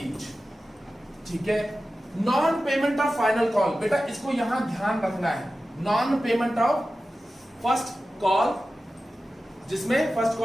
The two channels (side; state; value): both; normal; correlation 0.94